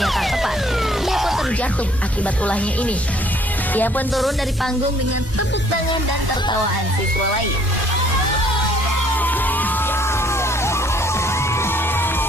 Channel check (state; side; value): normal; both; correlation 0.61